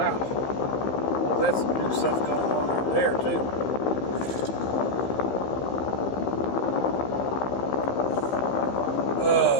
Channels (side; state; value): right; late; 15 ms